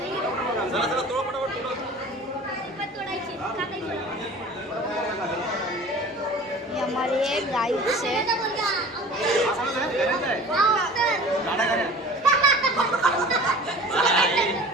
चला चला तोड पटापट हमारी एक गाय से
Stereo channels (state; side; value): normal; both; correlation 0.42